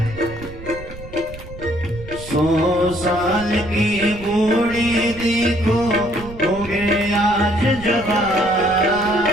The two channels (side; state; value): right; noise; rumble, 14 dB below the sound